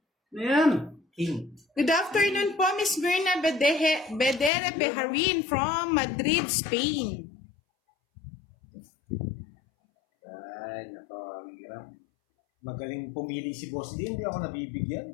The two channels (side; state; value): right; drops out; at 4.5 s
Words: Ayan. King. Good afternoon po, Miss Mirna Bedere Beharin from Madrid, Spain. Ay, nako, ang hirap. Magaling pumili si Boss D, hindi ako